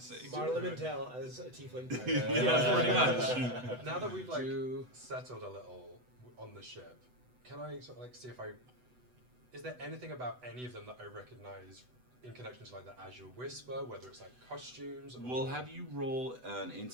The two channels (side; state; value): left; late; 8.0 ms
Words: Marla Mintel as a tiefling pirate. Yeah, pretty much. Now that we've, like, settled a little on the ship, can I sort of, like, see if is there anything about any of them that I recognize in connection to, like, the Azure Whisper, whether it's, like, costumes? Or We'll have you roll an